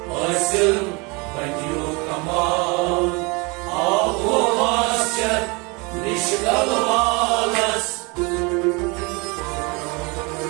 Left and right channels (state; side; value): quieter; left; 28.1 dB